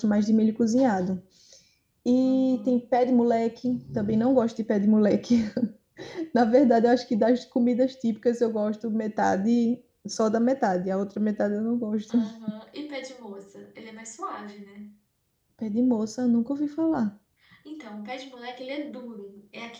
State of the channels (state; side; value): identical; both; correlation 1.00